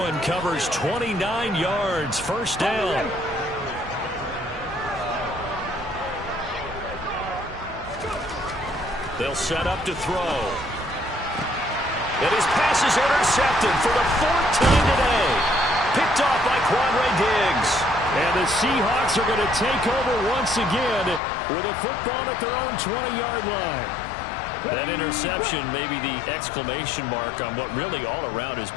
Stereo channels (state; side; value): drops out; right; at 21.2 s